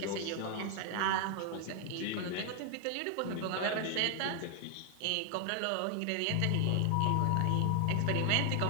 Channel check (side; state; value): both; different; correlation 0.00